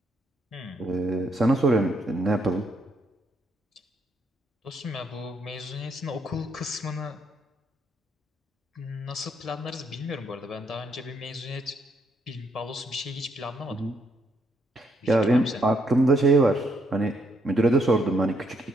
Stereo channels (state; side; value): normal; both; correlation 0.73